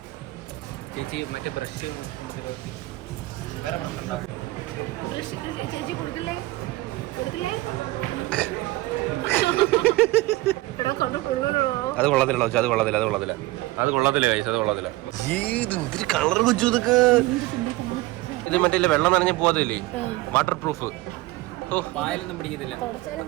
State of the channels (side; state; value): left; quieter; 19.5 dB